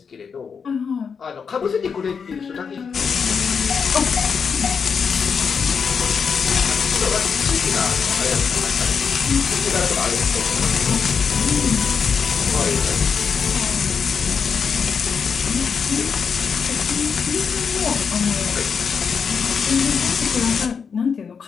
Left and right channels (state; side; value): quieter; right; 6.2 dB